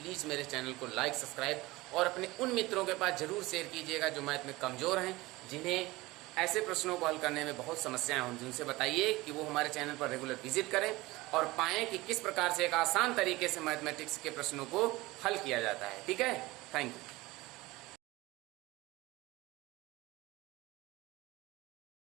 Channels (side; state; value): left; quieter; 20.4 dB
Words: मेरे चैनल को लाइक, सब्सक्राइब और अपने उन मित्रों के पास जरूर शेयर कीजिएगा जो मैथ में कमज़ोर हैं, जिन्हें ऐसे प्रश्नों को हल करने में बहुत समस्याएं हों। उनसे बताइए कि वो हमारे चैनल पर रेगुलर विजिट करें और पाएँ कि किस प्रकार से एक आसान तरीके से मैथमेटिक्स के प्रश्नों को हल किया जाता है। ठीक है, थैंक यू।